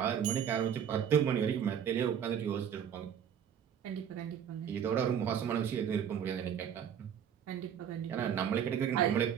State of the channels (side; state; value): left; quieter; 8.7 dB